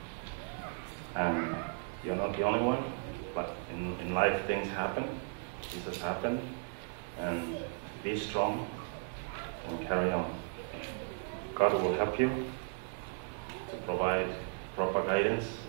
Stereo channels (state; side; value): quieter; left; 38.8 dB